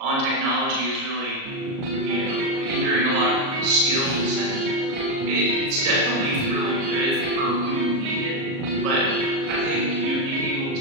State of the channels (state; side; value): late; left; 38 ms